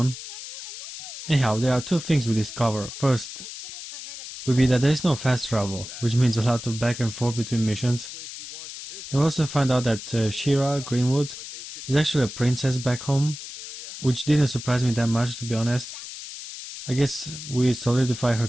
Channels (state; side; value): noise; left; hiss, 11 dB below the sound